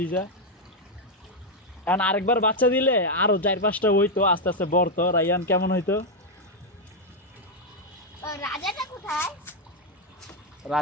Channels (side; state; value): both; normal; correlation 0.01